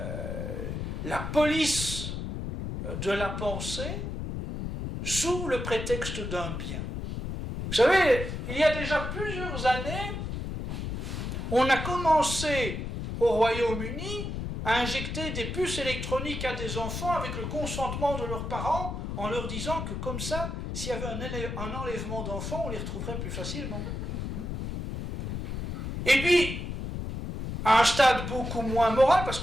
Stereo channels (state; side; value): noise; left; rumble, 5 dB below the sound